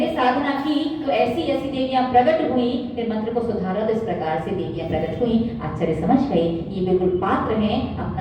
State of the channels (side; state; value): both; identical; correlation 1.00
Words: साधना की तो ऐसी ऐसी देवियां प्रकट हुई, फिर मंत्र को सुधारा तो इस प्रकार से देवियां प्रकट हुई। आचार्य समझ गए ये बिल्कुल पात्र हैं